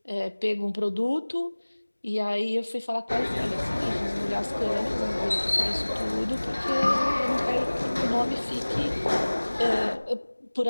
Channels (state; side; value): inverted; both; correlation -1.00